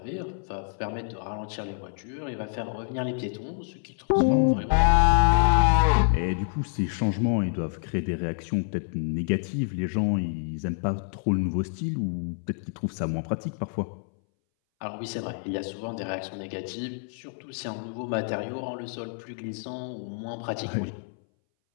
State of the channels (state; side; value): silent; right; 60 dB below the other